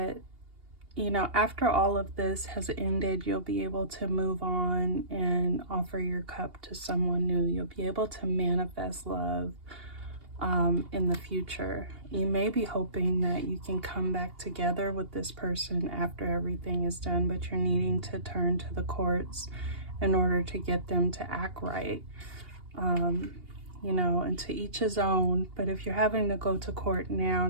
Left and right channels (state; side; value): late; left; 2.8 ms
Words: you know, after all of this has ended, you'll be able to move on and offer your cup to someone new. You'll be able to manifest love in the future. You may be hoping that you can come back together with this person after everything is done, but you're needing to turn to the courts in order to get them to act right. You know, and to each his own, but if you're having to go to court now